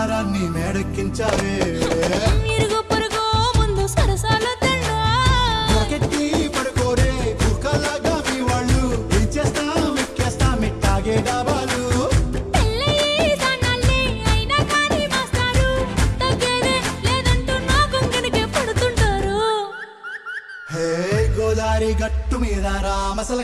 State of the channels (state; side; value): identical; both; correlation 1.00